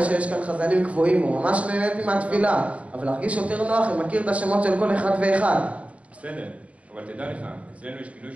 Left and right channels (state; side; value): late; left; 0.065 ms